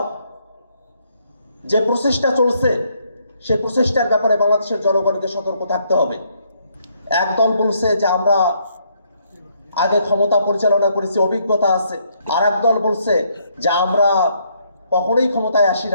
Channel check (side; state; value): both; inverted; correlation -0.71